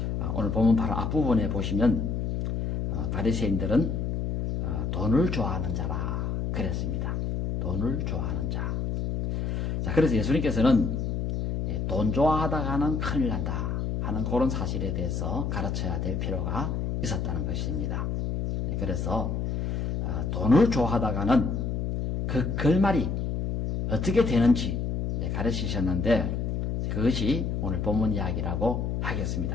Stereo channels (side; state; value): left; noise; hum, 1 dB below the sound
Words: 오늘 보면 바로 앞부분에 보시면 바리새인들은 돈을 좋아하는 자라 그랬습니다. 돈을 좋아하는 자. 자, 그래서 예수님께서는 돈 좋아하다가는 큰일 난다 하는 그런 사실에 대해서 가르쳐야 될 필요가 있었다는 것입니다. 그래서 돈을 좋아하다가는 그 결말이 어떻게 되는지 가르치셨는데 그것이 오늘 본문 이야기라고